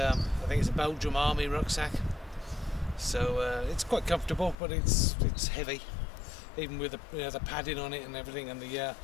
think it's a Belgian Army rucksack. So it's quite comfortable, but it's heavy, even with the padding on it and everything, and the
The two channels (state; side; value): drops out; right; at 4.5 s